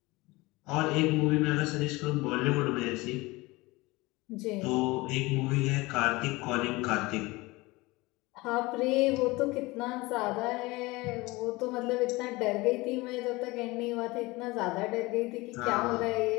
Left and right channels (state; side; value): quieter; right; 22.2 dB